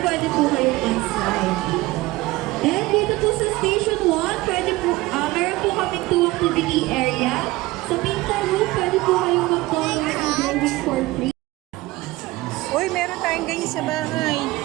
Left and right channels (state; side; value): quieter; left; 19.7 dB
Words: pwede po kayong on-slide. And dito po sa Station 1, pwede po, meron po kaming 2 activity area. Sa Pinta Room, pwede po kayong mag-color and drawing for free. Uy, meron tayong ganyan sa bahay.